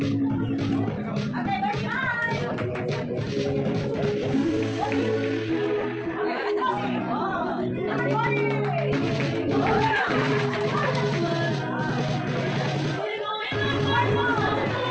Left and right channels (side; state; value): both; identical; correlation 1.00